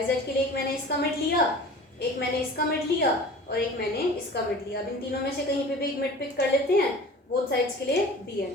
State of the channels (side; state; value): both; normal; correlation 0.41